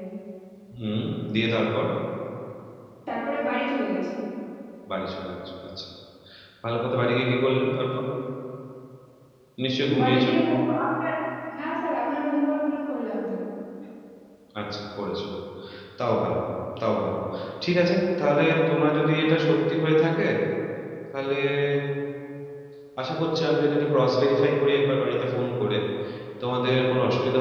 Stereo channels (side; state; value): both; identical; correlation 1.00